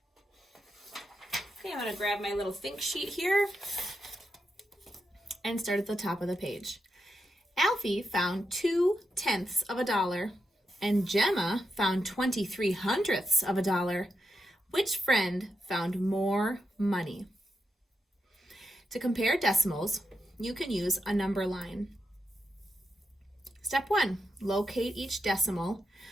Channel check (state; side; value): normal; both; correlation 0.85